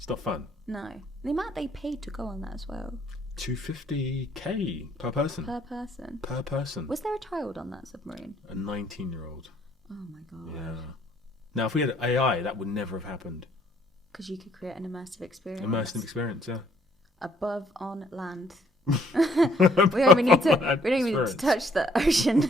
not fun. No. The amount they paid to go on that as well. $250K per person. Per person. Was there a child on that submarine? A 19-year-old. Oh my God. Yeah. Now, if we had AI, that would never have happened. Because you could create an immersive experience. Immersive experience, yeah. Above on land. we don't even need to touch the ocean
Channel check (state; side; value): normal; both; correlation 0.65